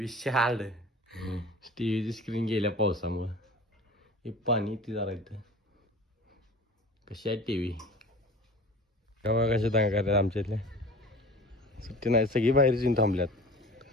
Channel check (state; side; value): normal; both; correlation 0.40